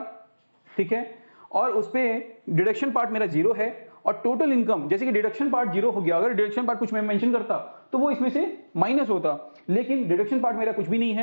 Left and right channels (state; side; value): inverted; both; correlation -1.00